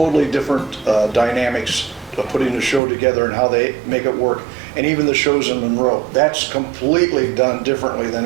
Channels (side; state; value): left; drops out; at 2.8 s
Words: different dynamics of putting the show together and how they make it work. And even the shows in Monroe, that's completely done differently than